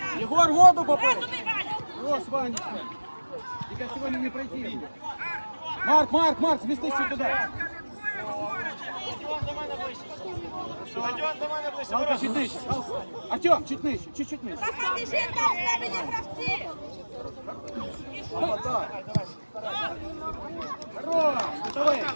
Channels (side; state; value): both; inverted; correlation -1.00